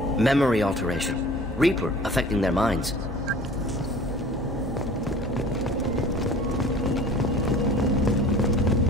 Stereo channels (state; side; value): normal; both; correlation 0.45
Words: Memory alteration. Reaper affecting their minds.